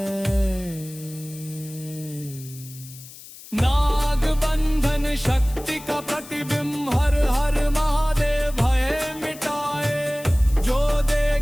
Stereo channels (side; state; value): left; noise; hiss, 17 dB below the sound